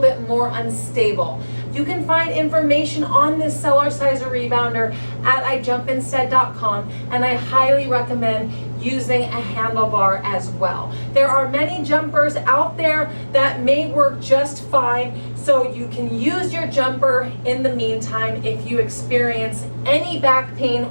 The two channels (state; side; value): inverted; both; correlation -1.00